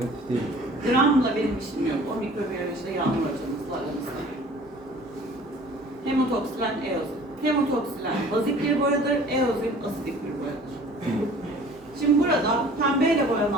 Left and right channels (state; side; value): normal; both; correlation 0.48